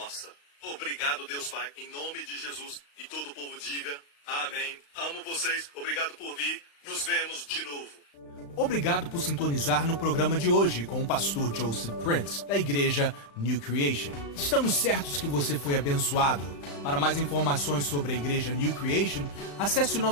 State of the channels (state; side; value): late; right; 35 ms